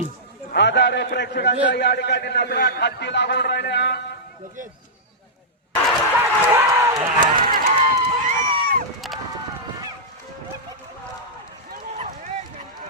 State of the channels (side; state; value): both; normal; correlation -0.12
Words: हजारो प्रेक्षकांच्या या ठिकाणी नजरा खालती लागून राहिल्या.